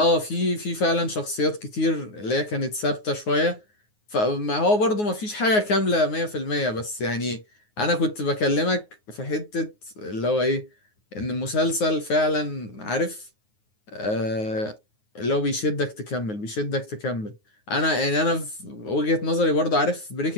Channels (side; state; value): right; late; 9.5 ms